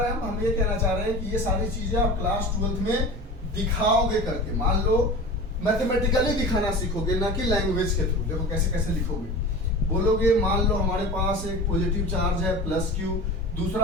हैं हम ये कहना चाह रहे हैं कि ये सारी चीजें आप क्लास 12th में दिखाओगे करके। मान लो मैथमेटिकली दिखाना सीखोगे, ना कि लैंग्वेज के थ्रू। देखो कैसे कैसे लिखोगे, बोलोगे मान लो हमारे पास एक पॉजिटिव चार्ज है +q,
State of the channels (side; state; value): both; normal; correlation 0.34